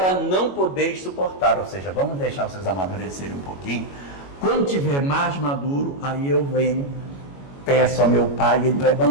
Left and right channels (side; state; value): right; late; 21 ms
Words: não podeis suportar. Ou seja, vamos deixar vocês amadurecerem um pouquinho. Quando tiver mais maduro, aí eu venho, peço ao meu Pai e Ele vai